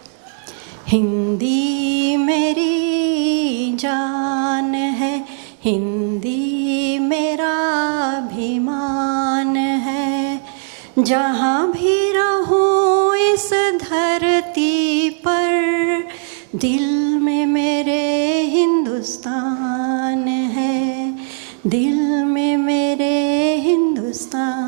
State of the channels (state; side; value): silent; left; digital silence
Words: हिंदी मेरी जान है, हिंदी मेरा अभिमान है, जहाँ भी रहूँ इस धरती पर, दिल में मेरे हिंदुस्तान है, दिल में मेरे